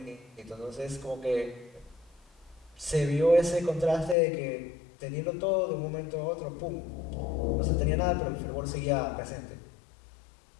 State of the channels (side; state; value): right; drops out; at 4.2 s